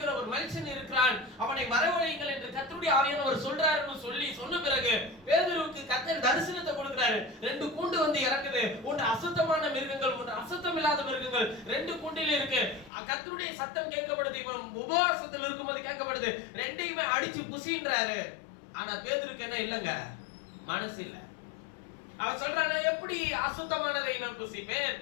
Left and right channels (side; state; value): right; drops out; at 12.9 s